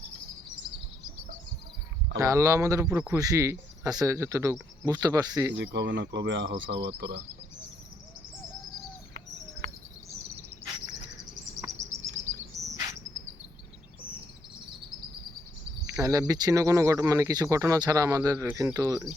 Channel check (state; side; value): normal; both; correlation 0.73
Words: আল্লাহ আমাদের উপরে খুশি আছে যতটুকু বুঝতে পারছি, যে কবে না কবে আহস আবার তোরা। নাহলে বিচ্ছিন্ন কোনো মানে কিছু ঘটনা ছাড়া আমাদের কিন্তু